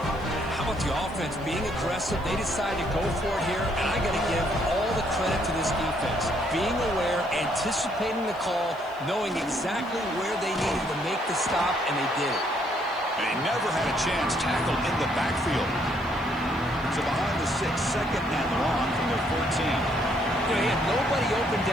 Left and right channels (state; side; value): noise; right; hiss, 27 dB below the sound